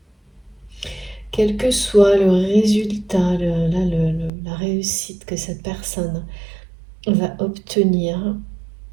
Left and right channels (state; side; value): drops out; left; at 4.3 s